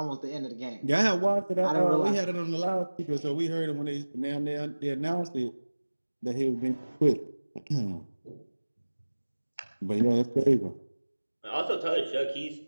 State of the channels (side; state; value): both; inverted; correlation -1.00